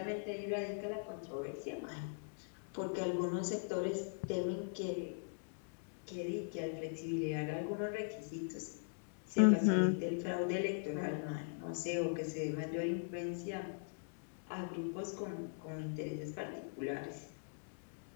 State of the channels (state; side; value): silent; right; digital silence